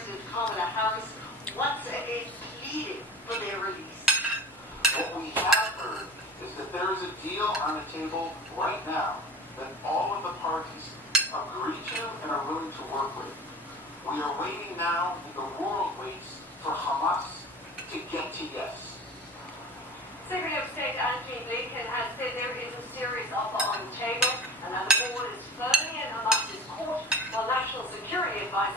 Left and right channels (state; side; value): normal; both; correlation 0.36